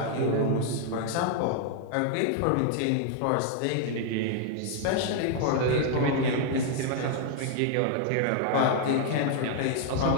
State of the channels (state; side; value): different; both; correlation 0.00